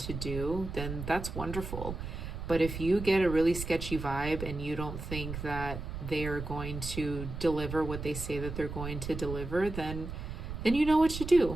do, then that's wonderful. But if you get a really sketchy vibe and you don't think that they are going to deliver what they say that they're going to deliver, then you know what to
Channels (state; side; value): noise; right; rumble, 7 dB below the sound